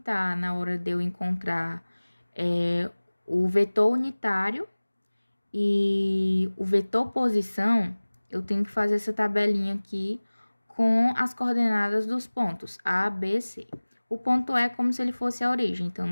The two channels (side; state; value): both; inverted; correlation -1.00